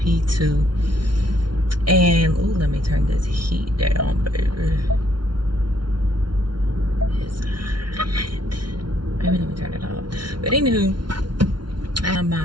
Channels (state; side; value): late; left; 0.71 ms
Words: And let me turn this heat down, baby. It's hot. Maybe let me turn it off. But anywho, I have my